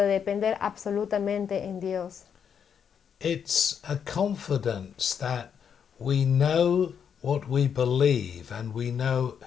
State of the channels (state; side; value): quieter; right; 7.6 dB